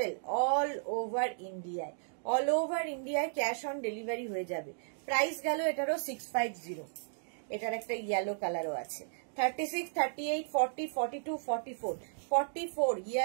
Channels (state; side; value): silent; left; digital silence